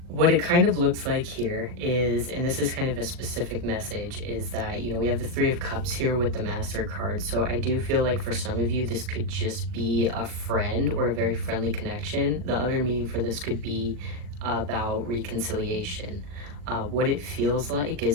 what it kind of looks like here is, and this is kind of a specific message, is that, we have the Three of Cups here with the Master card. So I do feel like for some of you, this could just be a friend or a very friendly connection. The other meaning for this could be about reconciliation. What it feels like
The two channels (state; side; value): late; left; 40 ms